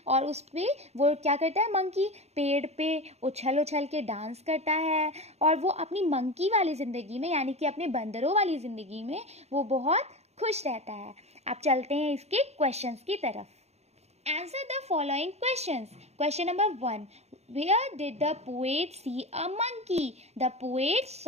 और उस पर वो क्या करता है, मंकी पेड़ पे उछल उछल के डांस करता है, और वो अपनी मंकी वाली ज़िंदगी में, यानी कि अपने बंदरों वाली ज़िंदगी में वो बहुत खुश रहता है. अब चलते हैं इसके क्वेश्चंस की तरफ. Answer the following questions. Question number 1. Where did the poet see a monkey? The poet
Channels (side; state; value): left; late; 0.31 ms